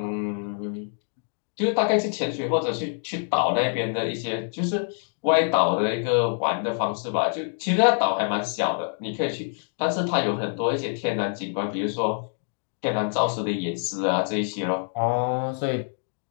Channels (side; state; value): right; silent; 61 dB below the other